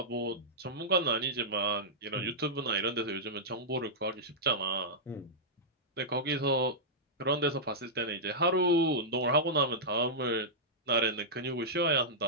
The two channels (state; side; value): normal; both; correlation -0.11